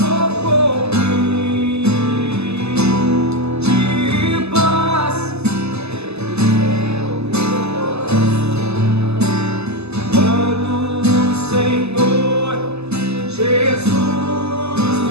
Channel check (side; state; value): left; late; 0.80 ms